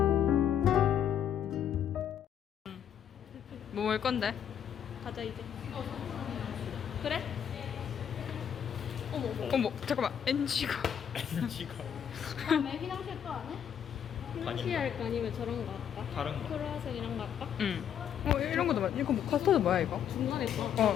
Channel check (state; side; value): quieter; right; 8.9 dB